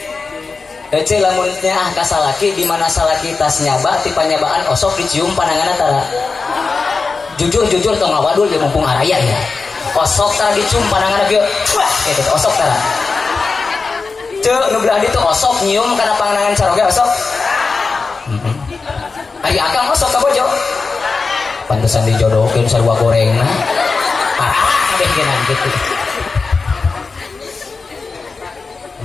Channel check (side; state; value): right; quieter; 4.4 dB